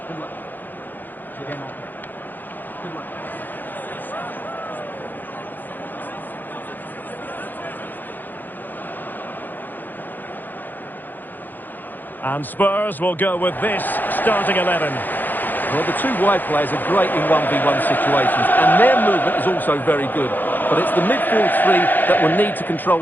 Good luck. Again. Good luck. And Spurs will go with this starting 11. Well, the two wide players are great in 1v1 situations, and their movement is also very good. But it's the midfield three that will need to control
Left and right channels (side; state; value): right; late; 0.087 ms